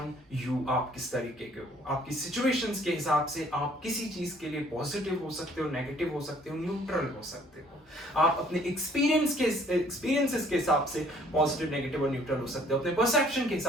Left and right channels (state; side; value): normal; both; correlation 0.59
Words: you, आप किस तरीके के हो। आपकी सिचुएशंस के हिसाब से आप किसी चीज के लिए पॉजिटिव हो सकते हो, नेगेटिव हो सकते हो, न्यूट्रल हो सकते हो। आप अपने एक्सपीरियंसेस के हिसाब से पॉजिटिव, नेगेटिव और न्यूट्रल हो सकते हो। अपने परसेप्शन के